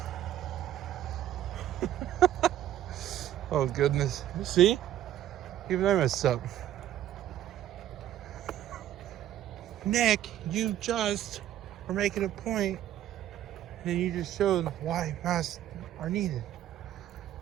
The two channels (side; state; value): left; quieter; 12.0 dB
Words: Oh, goodness. See? Even I messed up. Nick, you just were making a point, and you just showed why masks are needed.